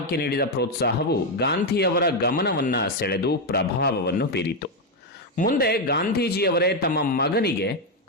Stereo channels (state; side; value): normal; both; correlation 0.04